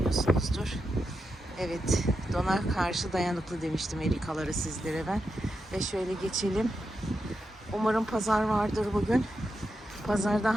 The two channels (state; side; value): normal; both; correlation 0.87